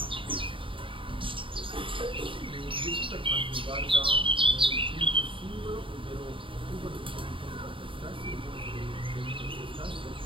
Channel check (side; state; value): left; late; 0.25 ms